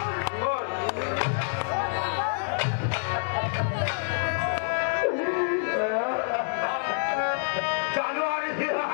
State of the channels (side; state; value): right; silent; digital silence